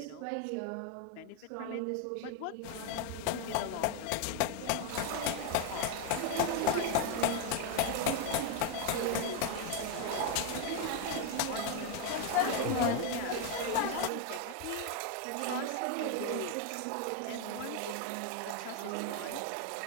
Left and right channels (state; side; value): different; both; correlation 0.01